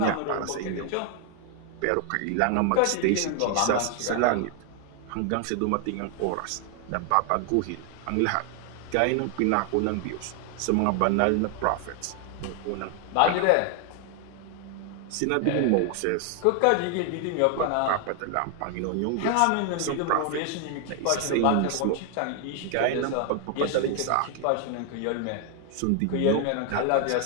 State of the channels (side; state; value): both; different; correlation 0.00